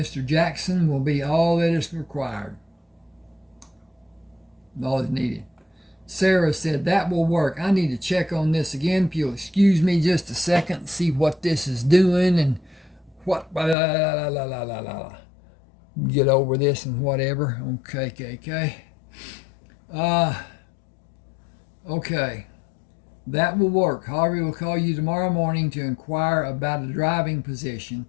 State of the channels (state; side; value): drops out; right; at 13.8 s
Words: Jackson will be all that is required. All is needed. Sarah said, that will work. I need to check on this again. If you'll excuse me just a second and see what this is doing and what. Get over this and whatever. Okay. Okay, that will work. Harvey will call you tomorrow morning to inquire about a driving position